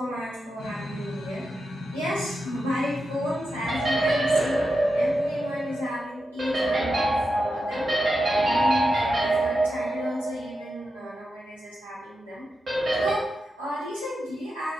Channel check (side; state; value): both; normal; correlation 0.89